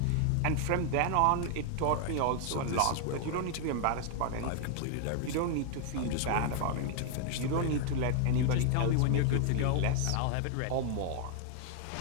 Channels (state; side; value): different; both; correlation 0.00